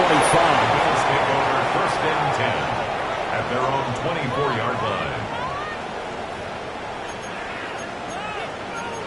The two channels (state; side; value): identical; both; correlation 1.00